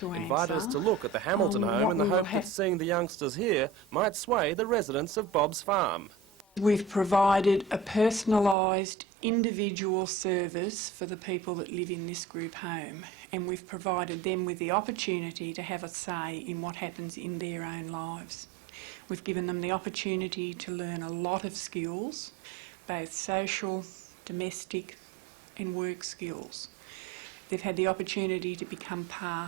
invited us to look at the Hamilton home in the hope that seeing the youngsters here might sway the residents of Bob's Farm. We've provided a personalised individual service for the people that live in this group home, and we've provided them with the opportunity to have a say in what happens in their own lives. We've given them the opportunity to learn a lot of skills, both social, domestic and work skills. They've had the opportunity to become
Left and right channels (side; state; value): left; drops out; at 8.6 s